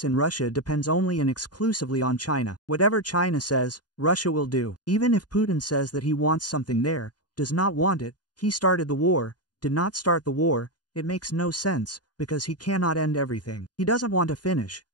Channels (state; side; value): late; right; 0.69 ms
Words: in Russia depends only and exclusively on China. Whatever China says, Russia will do. Even if Putin says that he wants something there, does not want it, he started the war, did not start the war, it makes no sense, because he cannot end everything. He doesn't want to finish,